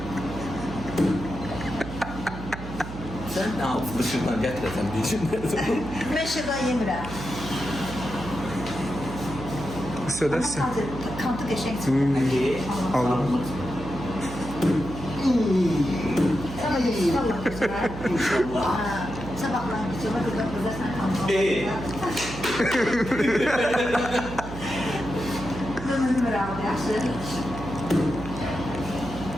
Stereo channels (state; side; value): noise; right; hum, 10 dB below the sound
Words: Sen ne yaptın şuradan getiresen diyeceğim. Ben şırdan yemirəm. Södersin. Kantı geçen Aldım. Sabah yesin Allah kızına. İnşallah. Sabahlar kızına kızlar sen kantı. Ömrüm var abi yaxşı.